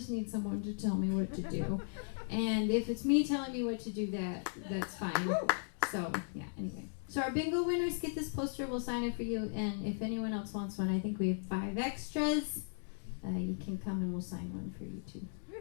need someone to tell me what to do. And if it's me telling me what to do, that's fine. So yeah, anyway. So our bingo winners get this poster. We'll sign it for you. And if anyone else wants one, I think we have 5 extras. You can come and we'll sign one for you too.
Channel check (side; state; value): right; silent; digital silence